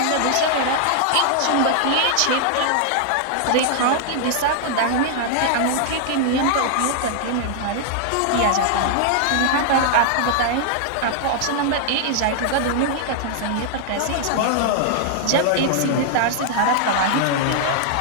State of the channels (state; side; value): different; both; correlation -0.01